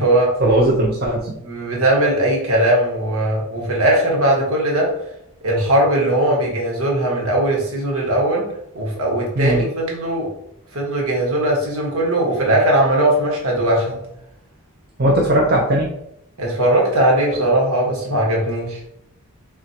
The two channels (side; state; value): both; normal; correlation -0.01